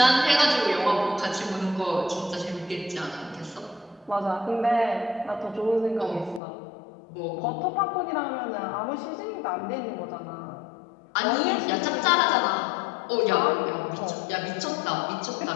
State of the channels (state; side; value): drops out; right; at 6.4 s